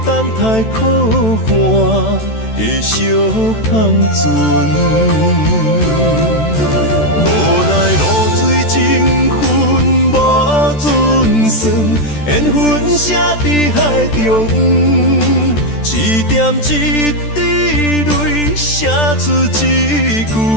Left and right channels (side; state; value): right; late; 14 ms